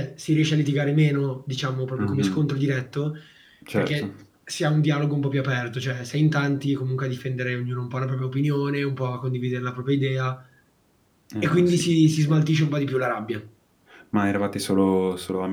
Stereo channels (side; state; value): both; identical; correlation 1.00